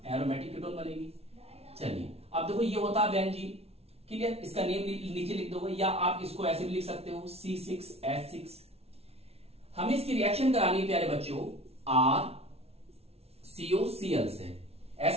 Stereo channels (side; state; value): left; late; 0.30 ms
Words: कीटोन बनेगी। चलिए अब देखो, ये होता है बेंजीन। क्लियर? इसका नेम नीचे लिख दोगे या आप इसको ऐसे भी लिख सकते हो, C6H6। हमें इसकी रिएक्शन करानी है प्यारे बच्चों RCOCl से,